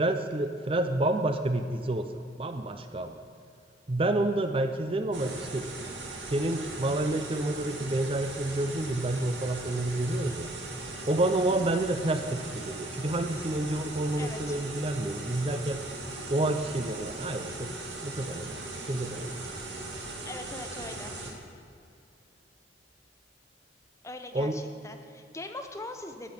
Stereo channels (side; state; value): both; normal; correlation 0.60